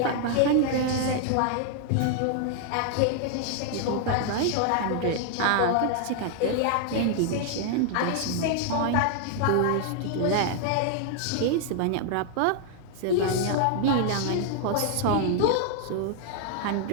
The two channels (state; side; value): different; both; correlation 0.00